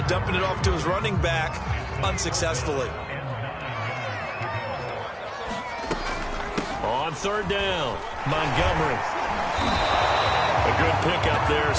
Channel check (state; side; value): identical; both; correlation 1.00